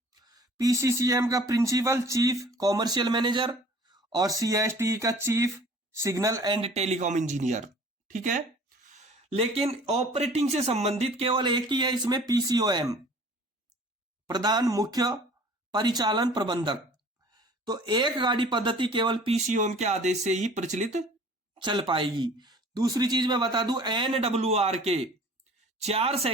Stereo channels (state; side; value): normal; both; correlation 0.49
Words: PCCM का प्रिंसिपल चीफ कॉमर्शियल मैनेजर और CSTE का chief signal and telecom engineer. ठीक है। लेकिन ऑपरेटिंग से संबंधित केवल एक ही है इसमें, PCOM, प्रधान मुख्य परिचालन प्रबंधक। तो एक गाड़ी पद्धति केवल PCOM के आदेश से ही प्रचलित चल पाएगी। दूसरी चीज मैं बता दूं, NWR के 4